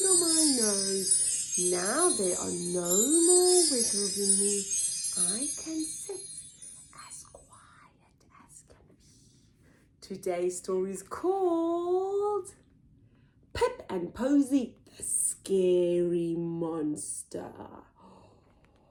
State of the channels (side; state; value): both; identical; correlation 1.00